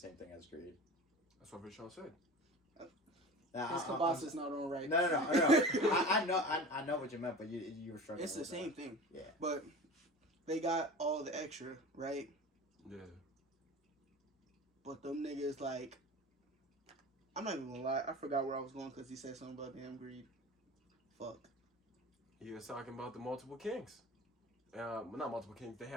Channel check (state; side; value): normal; both; correlation 0.35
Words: thing as greed. That's what Vashawn said. Now, His kielbasa is not on right. No. I know what you meant, but you were struggling. It's the with same that. thing. Yeah. But they got all the extra, right? Yeah. But them niggas, like, I'm not even gonna lie. I forgot where I was going because he said something about damn greed. Fuck. He was talking about the multiple kings. Well, not multiple kings. They